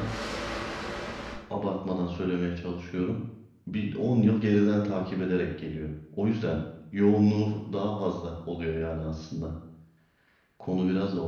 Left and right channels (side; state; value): both; identical; correlation 1.00